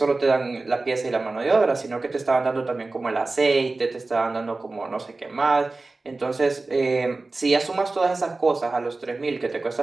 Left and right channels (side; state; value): left; quieter; 3.4 dB